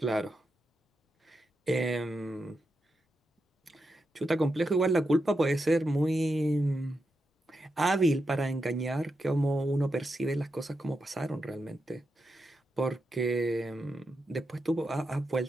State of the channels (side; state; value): both; normal; correlation 0.87